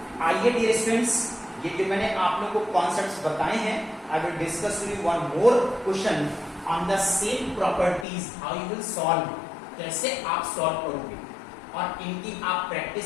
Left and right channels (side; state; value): right; drops out; at 8.1 s